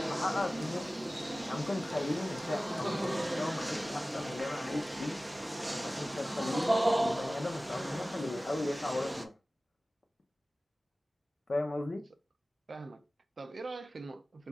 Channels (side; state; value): both; normal; correlation 0.97